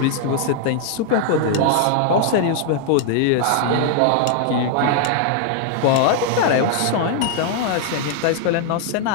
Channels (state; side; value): different; both; correlation 0.00